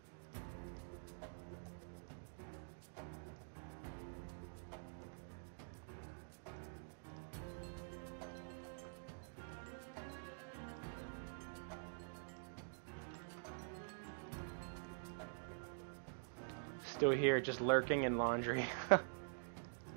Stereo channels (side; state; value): left; silent; digital silence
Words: Still here, just lurking in laundry.